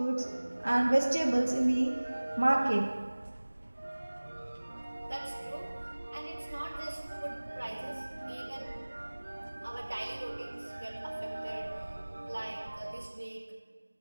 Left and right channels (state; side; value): inverted; both; correlation -1.00